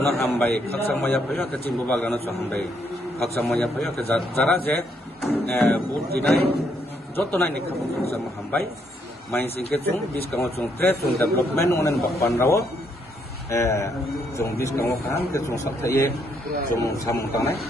hambai khaksang maya phayo ke chini Bubagra no chung hambai khaksang maya phayo ke jara je vote dinai jotonai ni khabong khaksang hambai main singke chung biskango chung trade chung development onen bakpan rawo chung biskango kan ke chung sapthaye chung samung tangnai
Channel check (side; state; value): both; normal; correlation 0.73